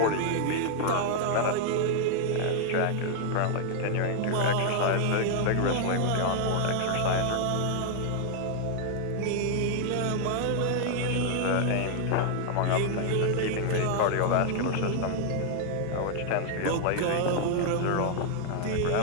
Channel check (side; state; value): both; different; correlation 0.00